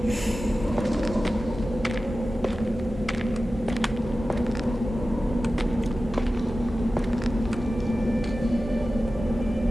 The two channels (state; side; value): normal; both; correlation 0.94